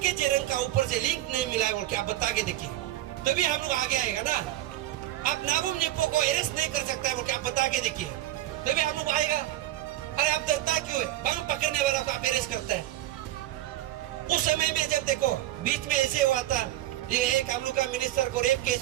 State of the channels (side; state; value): left; quieter; 14.7 dB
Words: जेरन का ऊपर से लिंक नहीं मिला है बोल के आप बता के देखिए। तभी हम लोग आगे आएगा ना। अब नाबुम निप्पो को अरेस्ट नहीं कर सकता है, आप बता के देखिए, तभी हम लोग आएगा। अरे आप डरता क्यों है? बम पकड़ने वाला को आप अरेस्ट करता है। उस समय में जब देखो बीच में ऐसे हुआ था, ये एक हम लोग का मिनिस्टर को रेप